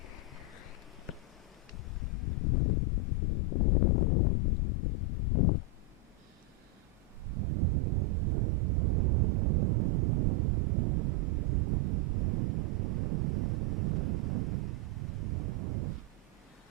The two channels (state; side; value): normal; both; correlation 0.00